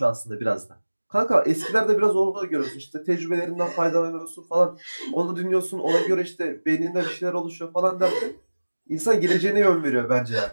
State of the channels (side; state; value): both; inverted; correlation -1.00